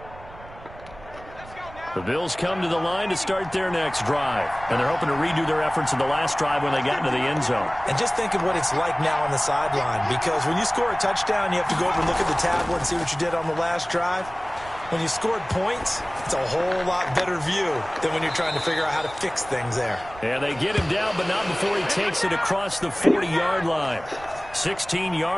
The Bills come to the line to start their next drive. And they're hoping to redo their efforts in the last drive when they got into the end zone. And just think of what it's like now on the sideline, because when you score a touchdown, you have to go over and look at the tablet and see what you did on the last drive. When you scored points, it's a whole lot better view than when you're trying to figure out how to fix things there. And they get him down, but not before he takes it across the 40-yard line. 16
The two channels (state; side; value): noise; right; rumble, 19 dB below the sound